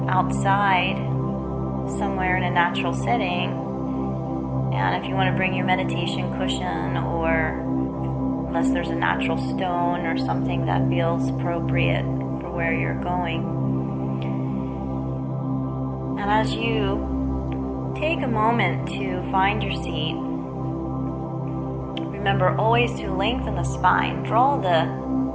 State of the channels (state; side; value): identical; both; correlation 1.00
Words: outside somewhere in a natural setting, and if you want to bring your meditation cushion, or unless there's a natural stone or something that feels appropriate for where you're going. And as you take a moment to find your seat, remember always to lengthen the spine. Draw the